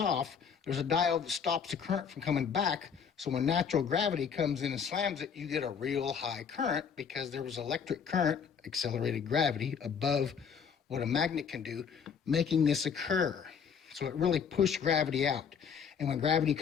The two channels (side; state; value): right; quieter; 6.8 dB